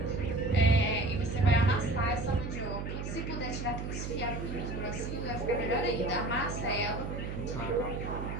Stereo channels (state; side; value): noise; right; hum, 5 dB below the sound